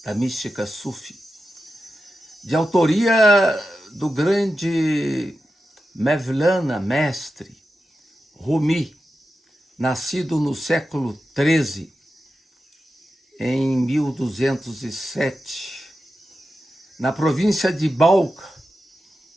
da mística Sufi, de autoria do grande Mevlana, mestre, Rumi, nascido no século XIII, em 1207, na província de Balkh,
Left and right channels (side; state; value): both; normal; correlation 0.91